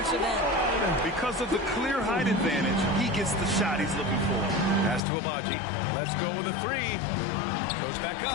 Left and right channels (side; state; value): right; drops out; at 5.0 s